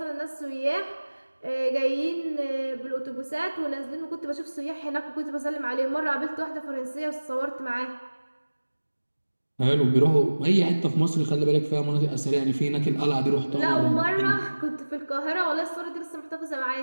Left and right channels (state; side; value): inverted; both; correlation -1.00